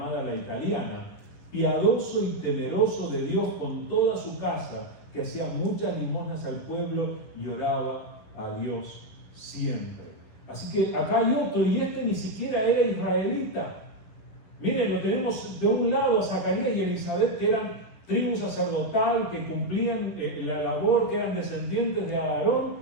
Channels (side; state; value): right; late; 10 ms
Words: La Italiana, piadoso y temeroso de Dios con toda su casa, que hacía muchas limosnas al pueblo y oraba a Dios siempre. Así que acá hay otro, y este ni siquiera era israelita. Miren, lo tenemos de un lado a Zacarías y Elizabeth, que eran tribu sacerdotal, que cumplían la labor, que eran descendientes de Aarón,